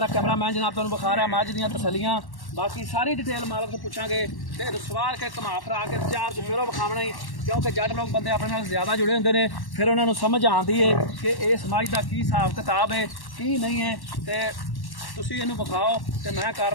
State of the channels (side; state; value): right; late; 1.1 ms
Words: कैमरामैन जनाब तुहानूं विखा रहा मझ दियां तसलियां, बाकी सारी डिटेल मालक तो पुछांगे। ते सवार के घुमा फिरा के चार चफेरों विखावना ही, क्योंकि जट लोग बंदे अपने नाल ज़्यादा जुड़े होंदे ने, फिर उन्होंने समझ आती है कि इस मझ का की हिसाब किताब है की नहीं है। तो तुसीं इहनूं विखाओ ते मैं